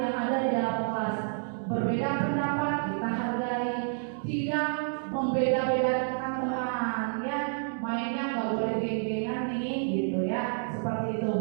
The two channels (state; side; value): silent; left; digital silence